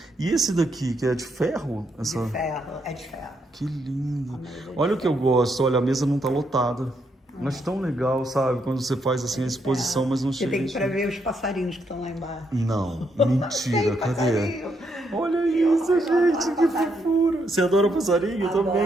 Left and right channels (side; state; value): both; normal; correlation 0.77